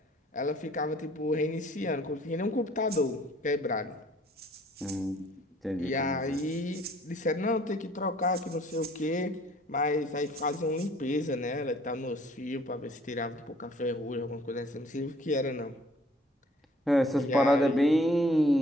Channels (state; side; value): normal; both; correlation 0.57